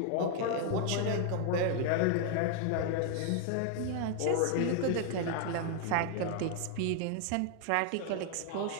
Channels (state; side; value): different; both; correlation 0.00